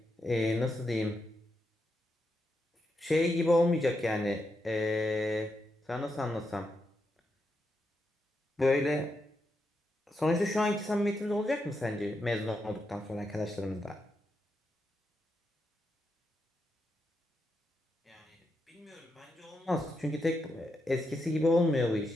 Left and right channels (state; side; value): normal; both; correlation 0.84